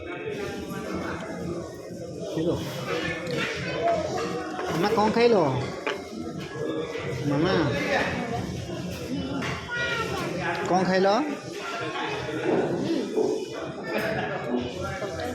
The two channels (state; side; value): identical; both; correlation 1.00